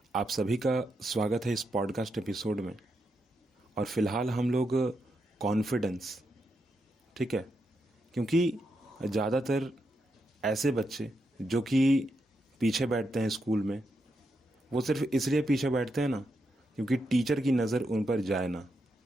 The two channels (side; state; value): both; normal; correlation 0.83